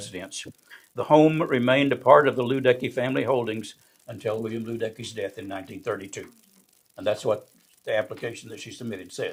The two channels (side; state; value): both; identical; correlation 1.00